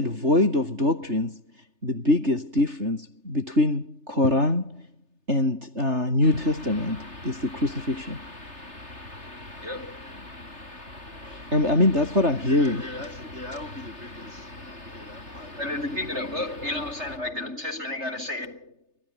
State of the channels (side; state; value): left; late; 3.3 ms